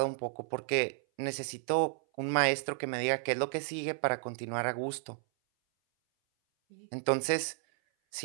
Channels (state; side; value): silent; left; 56 dB below the other